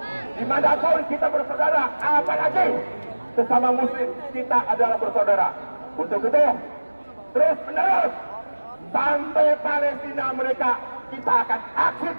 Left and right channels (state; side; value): inverted; both; correlation -1.00